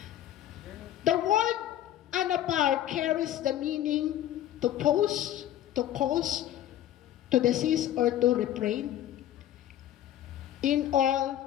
the word anapau carries the meaning to pause, to cause, to desist, or to refrain. In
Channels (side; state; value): right; quieter; 12.1 dB